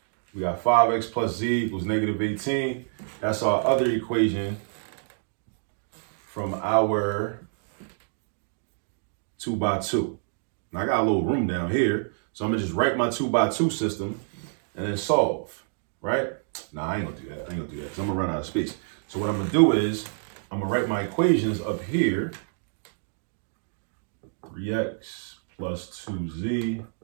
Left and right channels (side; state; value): left; silent; digital silence